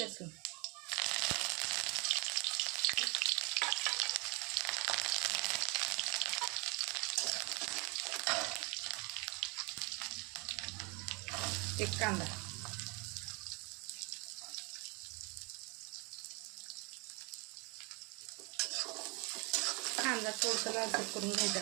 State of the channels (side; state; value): left; quieter; 30.1 dB